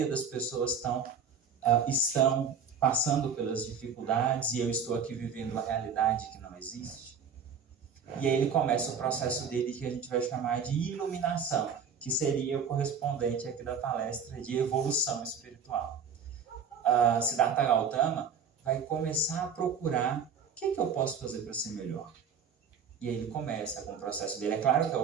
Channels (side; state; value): left; quieter; 6.4 dB